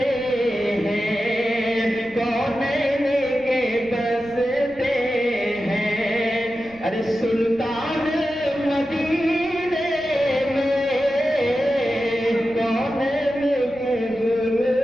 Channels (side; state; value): right; noise; rumble, 23 dB below the sound